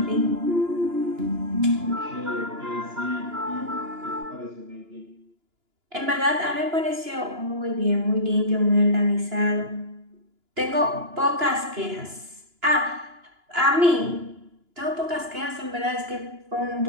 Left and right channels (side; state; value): left; late; 2.9 ms